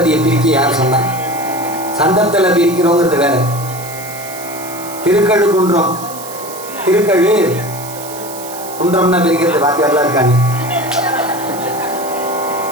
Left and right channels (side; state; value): right; noise; hiss, 13 dB below the sound